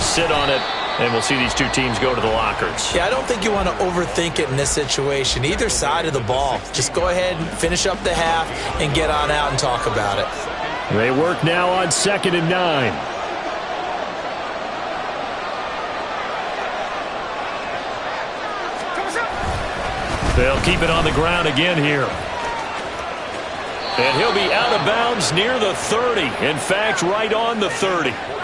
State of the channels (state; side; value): identical; both; correlation 1.00